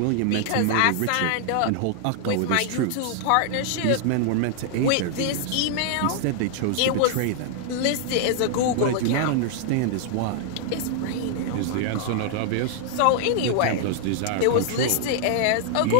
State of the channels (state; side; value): different; both; correlation 0.00